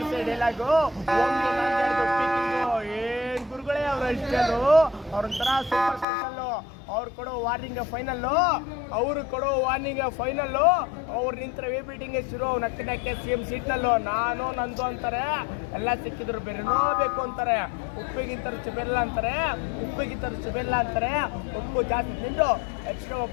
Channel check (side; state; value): right; drops out; at 6.1 s